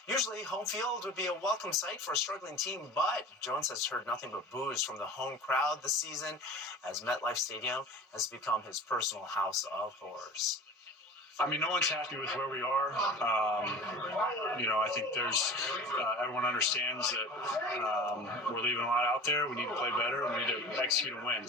Usually, home field would be a welcome sight for a struggling team, but Jones has heard nothing but boos from the home crowd this season as MetLife Stadium has become his personal house of horrors. I mean, no one's happy with where we are. I think there's everyone understands that we're leaving a lot out there. We need to play better. We need to execute and win.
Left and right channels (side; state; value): both; normal; correlation 0.38